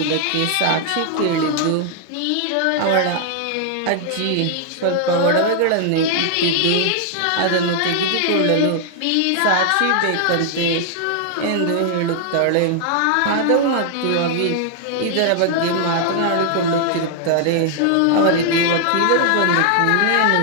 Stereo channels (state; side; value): different; both; correlation 0.00